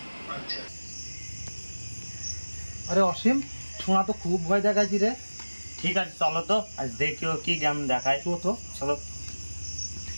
আরে অসীম, শোনা তো খুব ভয় দেখাচ্ছি রে। ঠিক আছে চলো তো, আজ দেখিও কি গেম দেখায়। তো চলো।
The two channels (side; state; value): both; inverted; correlation -1.00